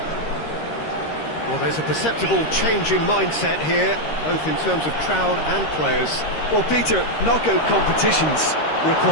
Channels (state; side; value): late; right; 13 ms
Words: Well, there's a perceptible change in mindset here, both in terms of crowd and players. Well, Peter, knockout competitions